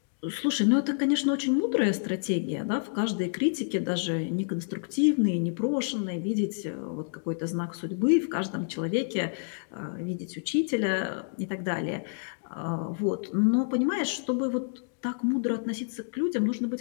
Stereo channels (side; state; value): right; silent; digital silence